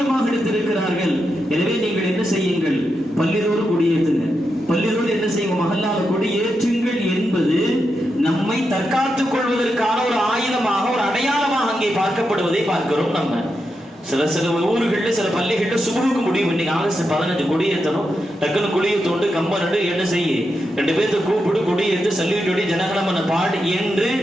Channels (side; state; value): both; normal; correlation 0.86